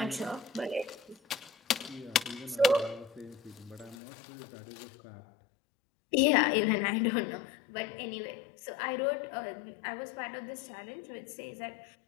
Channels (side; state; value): right; drops out; at 4.0 s